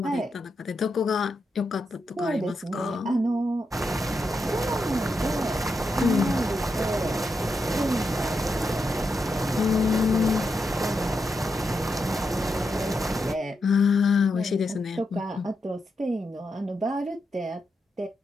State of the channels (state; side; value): normal; both; correlation 0.85